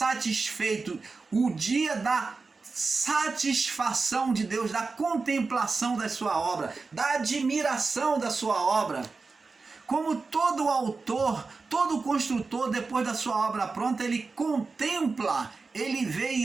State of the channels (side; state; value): left; quieter; 4.2 dB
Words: O dia da satisfação de Deus, da contemplação da sua obra, da admiração da sua obra. Como todo autor, todo construtor, depois da sua obra pronta, ele contempla, ele vê